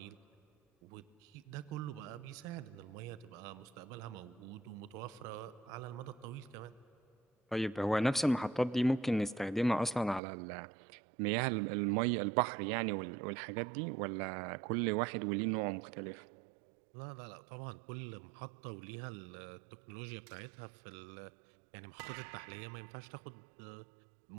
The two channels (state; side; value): drops out; left; at 10.2 s